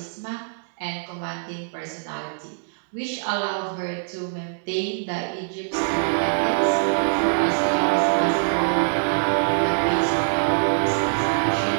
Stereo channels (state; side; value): silent; left; digital silence